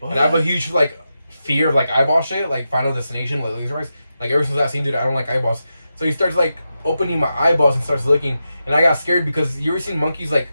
And I have a huge, like, fear of, like, eyeball shit, like, Final Destination, like, laser eyes. Like, ever since that scene, dude, I don't like eyeballs. So he starts, like, opening my eyeballs and starts looking, and I got scared because you ever seen monkeys like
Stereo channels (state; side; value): inverted; both; correlation -0.89